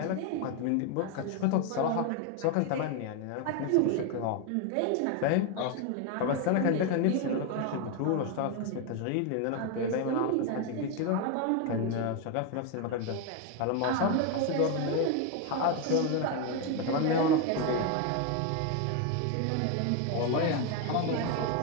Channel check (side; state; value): both; different; correlation 0.01